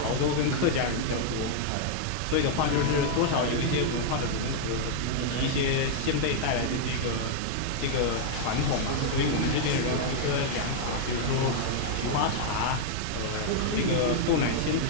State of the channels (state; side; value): different; both; correlation -0.01